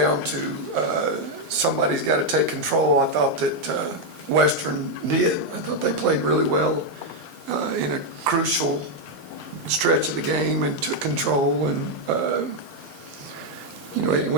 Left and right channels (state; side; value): late; right; 2.0 ms